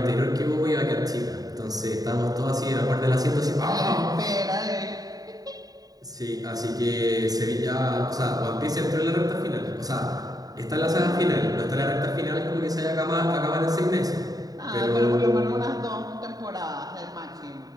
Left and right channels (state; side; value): late; left; 0.18 ms